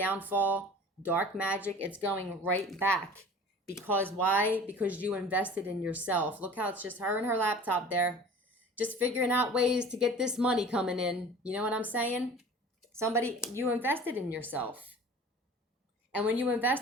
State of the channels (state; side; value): normal; both; correlation 0.43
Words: dark magic, it's going right back. Because why? Because you invested in yourself. Look how it's just her and her laptop there, just figuring out ways to get this money coming in. You know what I'm saying? You invested in yourself. And when you